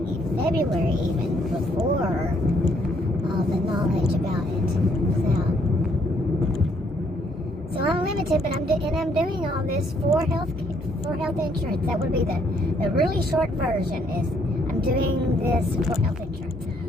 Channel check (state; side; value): normal; both; correlation 0.68